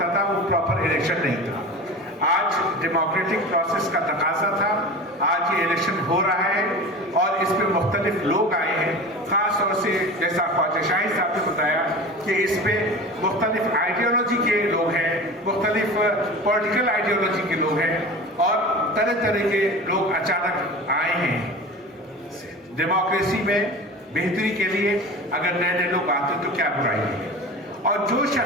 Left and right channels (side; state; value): both; normal; correlation 0.33